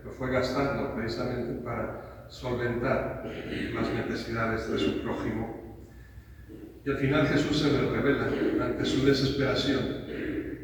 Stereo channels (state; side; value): identical; both; correlation 1.00